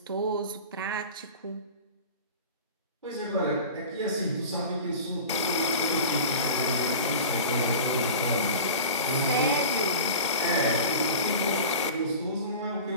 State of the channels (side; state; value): both; inverted; correlation -0.35